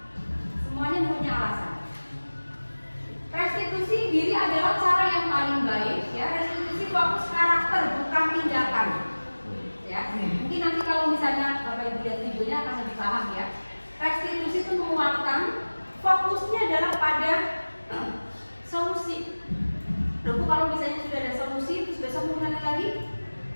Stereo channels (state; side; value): inverted; both; correlation -1.00